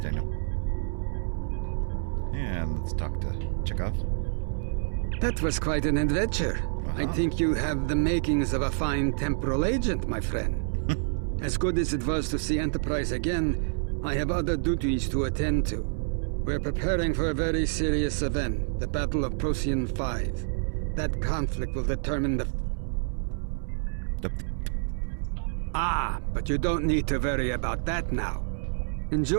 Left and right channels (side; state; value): left; silent; 59 dB below the other